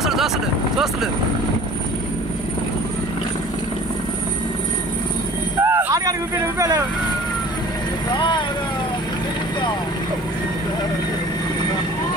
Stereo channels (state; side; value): normal; both; correlation 0.46